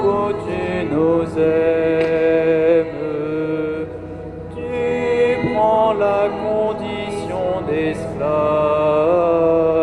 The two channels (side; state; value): both; identical; correlation 1.00